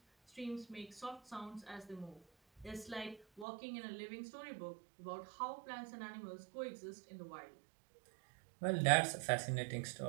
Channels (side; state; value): left; drops out; at 3.5 s